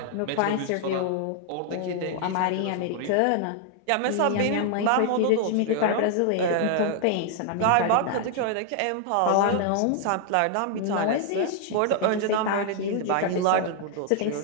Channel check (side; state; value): both; different; correlation 0.00